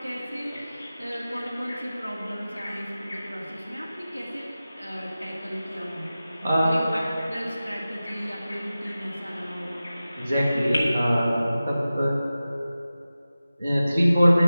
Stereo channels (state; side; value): inverted; both; correlation -0.95